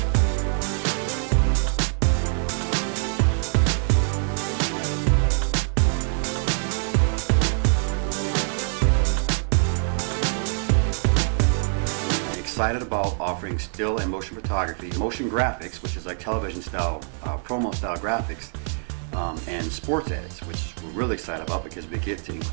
Excited about offering still and motion photography, motion graphics, which is like television style, promo style graphics, and sports edits, which we're really excited about because we get to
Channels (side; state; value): left; silent; 57 dB below the other